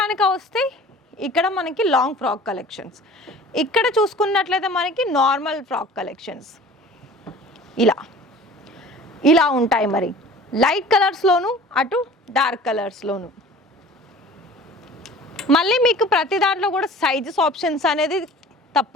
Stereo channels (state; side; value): normal; both; correlation 0.44